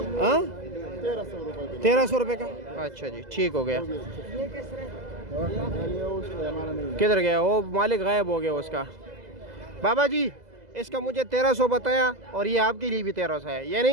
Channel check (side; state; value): left; late; 2.0 ms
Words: हाँ, 1300 रुपये का। अच्छा जी, ठीक हो गया। किधर गया वो मालिक? गायब हो गया उसका। बाबा जी, इसका मुझे 1300 बताया, और ये आपके लिए भी 1300 है, ये